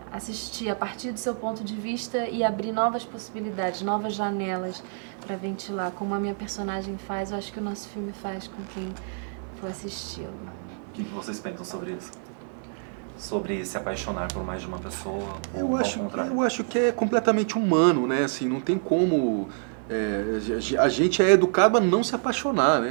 assistir a partir do seu ponto de vista e abrir novas possibilidades, novas janelas para ventilar. Como a minha personagem faz, eu acho que o nosso filme faz com quem for assisti-lo. O que vocês pensam sobre isso? Sobre se apaixonar por mais de uma pessoa, ou ao contrário? Eu acho que é completamente humano, né? Assim, não tem como... a gente é educado a não se apaixonar,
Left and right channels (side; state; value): left; silent; 56 dB below the other